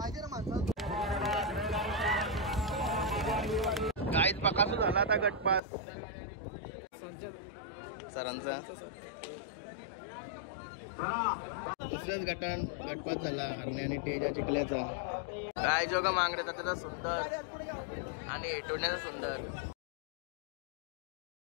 गाईत बकासूर झाला आता गटपास सरांचा दुसऱ्याच गटपास झाला हरणे आणि टेजा चिखल्याचा गाय जोगा मांगरे त्याचा सुंदर आणि टोण्याचा सुंदर.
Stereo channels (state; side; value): drops out; right; at 5.6 s